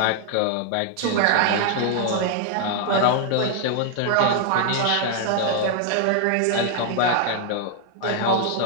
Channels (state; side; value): different; both; correlation 0.00